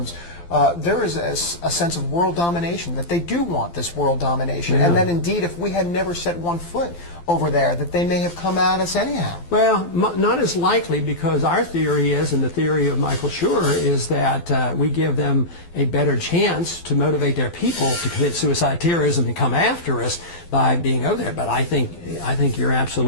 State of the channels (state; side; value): late; right; 12 ms